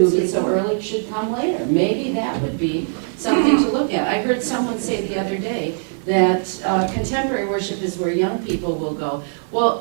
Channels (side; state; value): left; silent; 65 dB below the other